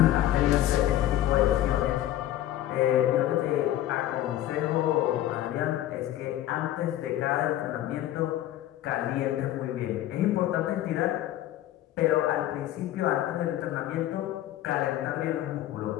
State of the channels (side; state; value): right; quieter; 13.3 dB